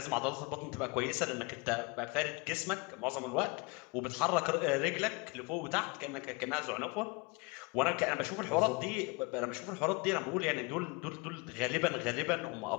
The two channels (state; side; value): quieter; right; 28.1 dB